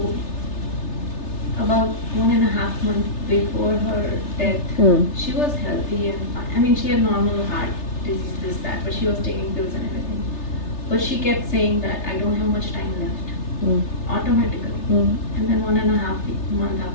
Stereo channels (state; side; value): late; right; 3.3 ms